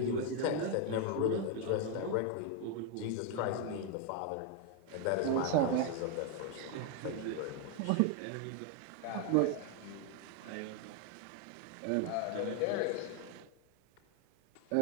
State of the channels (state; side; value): different; both; correlation 0.01